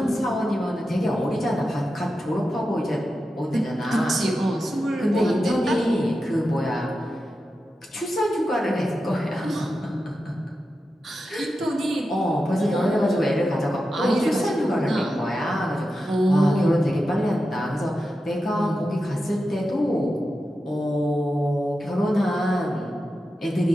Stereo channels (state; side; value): normal; both; correlation 0.90